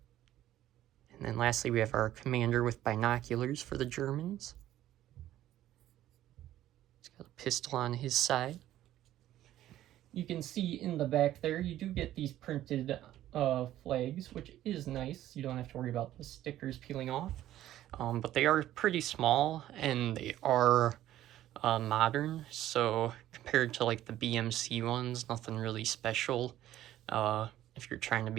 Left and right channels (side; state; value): left; quieter; 13.3 dB